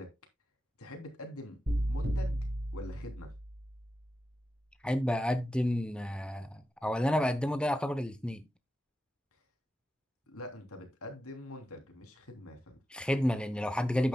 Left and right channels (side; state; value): both; normal; correlation 0.91